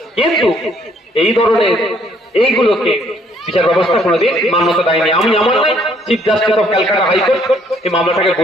কিন্তু এই ধরনের এইগুলোকে বিচার ব্যবস্থা কোনোদিন মান্যতা দেয়নি। আমি আমার নাই, chief justice of Calcutta high court এই মামলাটাকে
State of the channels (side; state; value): both; normal; correlation 0.65